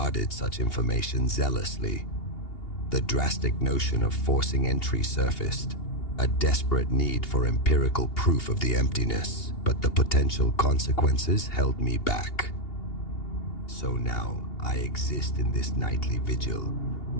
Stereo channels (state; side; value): late; right; 2.8 ms